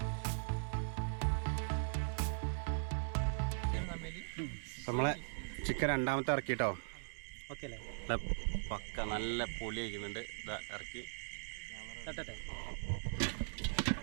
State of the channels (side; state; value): left; silent; digital silence